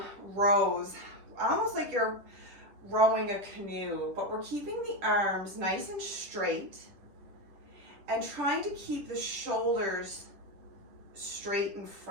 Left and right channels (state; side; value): late; left; 10 ms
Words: rows, almost like you're rowing a canoe, but we're keeping the arms nice and straight and trying to keep the shoulders straight in